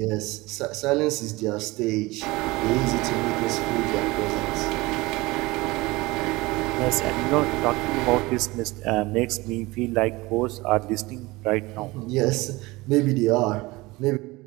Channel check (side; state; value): left; quieter; 21.6 dB